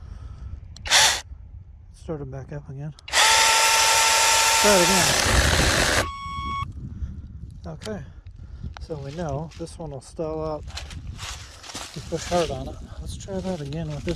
Start it back up again. Try it again. Okay, so we know this one will stall out if you push hard on it. Let's try that again with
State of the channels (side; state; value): both; identical; correlation 1.00